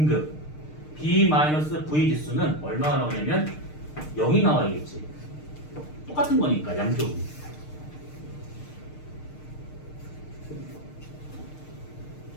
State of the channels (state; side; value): late; right; 6.6 ms